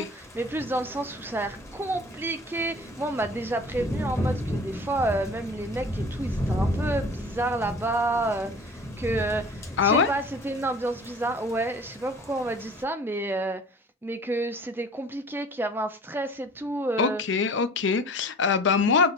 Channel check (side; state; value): both; normal; correlation 0.44